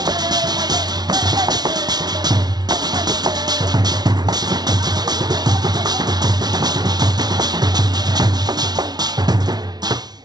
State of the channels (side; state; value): left; late; 0.19 ms